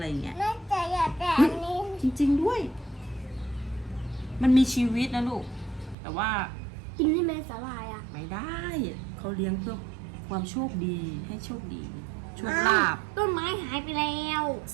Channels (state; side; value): drops out; left; at 6.0 s